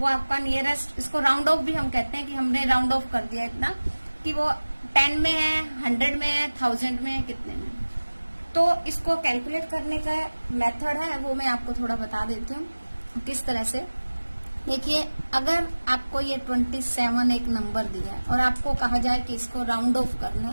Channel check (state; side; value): inverted; both; correlation -1.00